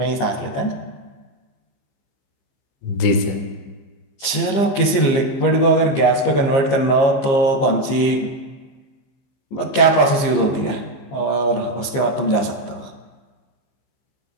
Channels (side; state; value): right; late; 15 ms